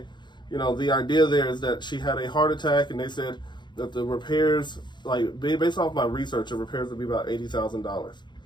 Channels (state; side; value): late; right; 0.22 ms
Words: the idea there is that she had a heart attack, and they said that the repairs, like based off my research, the repairs would be about $80,000.